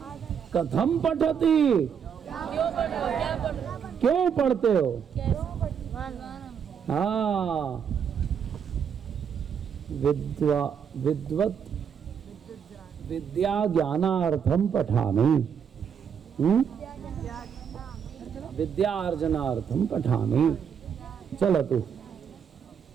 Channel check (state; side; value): quieter; left; 7.5 dB